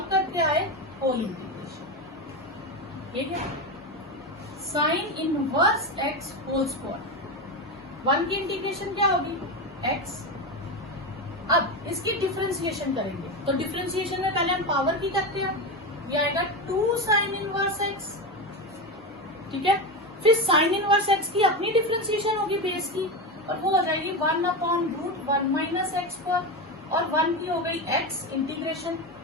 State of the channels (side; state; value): both; normal; correlation 0.17